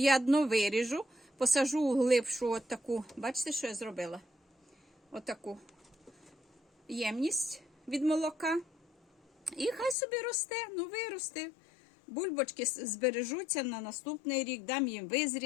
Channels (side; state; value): right; drops out; at 10.0 s